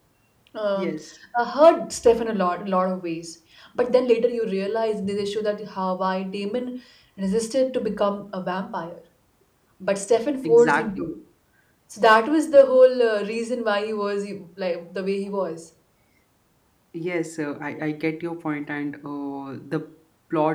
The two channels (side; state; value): both; identical; correlation 1.00